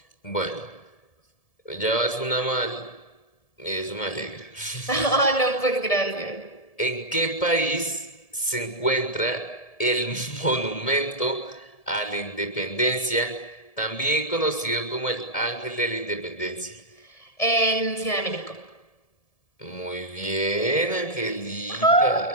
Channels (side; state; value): right; late; 1.7 ms